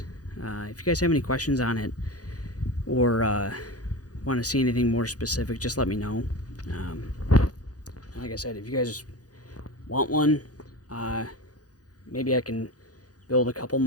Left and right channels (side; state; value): right; late; 0.68 ms